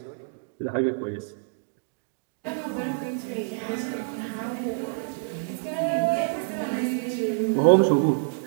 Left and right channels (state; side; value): silent; left; digital silence